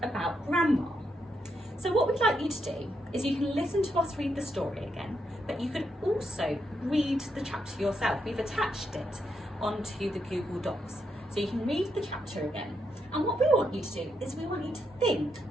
about Grandma? So what we'd like you to do is you can listen to us read the story again, but you can also read the chapter yourself. We've attached it onto the Google Docs, so you can read the chapter again. And what we want you to do is we want you to think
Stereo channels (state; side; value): normal; both; correlation 0.80